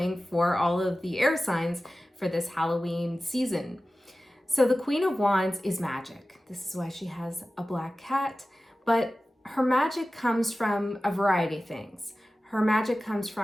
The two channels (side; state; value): both; normal; correlation 0.96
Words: for all of the air signs for this Halloween season. So the Queen of Wands is magic. This is why she has a black cat, but her magic comes from a variety of things. Her magic comes